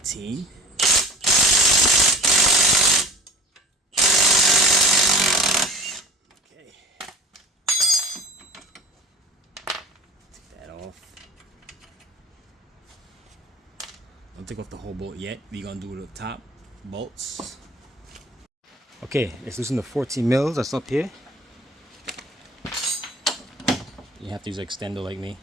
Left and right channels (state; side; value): normal; both; correlation 0.41